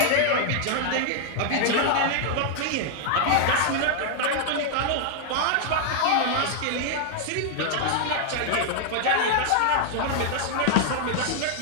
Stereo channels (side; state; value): both; different; correlation 0.00